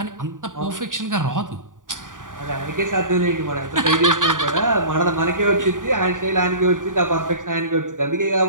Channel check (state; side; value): late; left; 0.88 ms